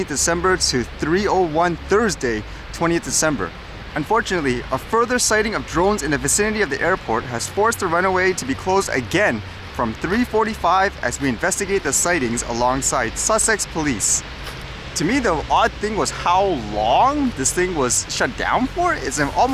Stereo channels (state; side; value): identical; both; correlation 1.00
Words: December to 3:01 Thursday 20th December. Unfortunately, a further sighting of drones in the vicinity of the airport has forced the runway to be closed again from 3:45 as we investigate the sightings alongside Sussex Police. To me, the odd thing was how long this thing was shut down for. It's